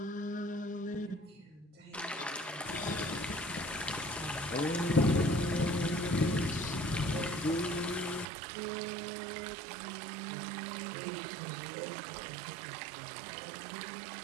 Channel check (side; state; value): left; drops out; at 8.2 s